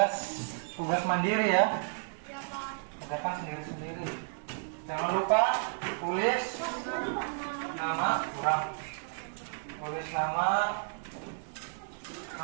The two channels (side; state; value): left; silent; digital silence